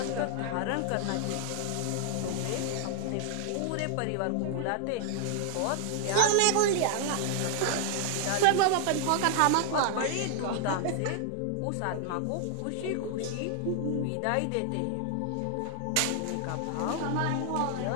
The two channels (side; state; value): both; different; correlation -0.01